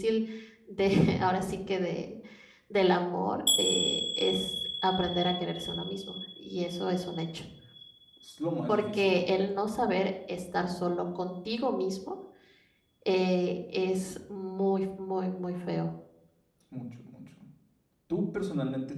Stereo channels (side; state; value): both; identical; correlation 1.00